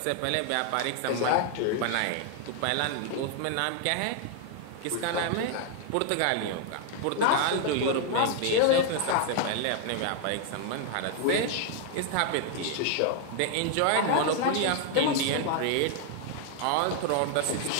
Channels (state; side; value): different; both; correlation 0.00